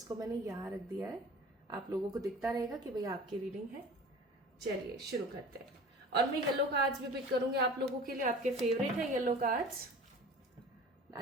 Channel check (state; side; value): normal; both; correlation 0.41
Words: मैंने यहाँ रख दिया है, आप लोगों को दिखता रहेगा कि भाई आपकी रीडिंग है। चलिए शुरू करते हैं। और मैं येलो कार्ड्स भी पिक करूंगी आप लोगों के लिए, आपके फेवरेट है yellow cards.